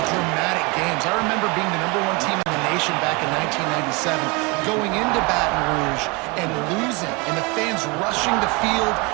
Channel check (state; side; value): quieter; left; 27.5 dB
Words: dramatic games. I remember being the #1 team in the nation back in 1997, going into Baton Rouge and losing, and the fans rushing the field,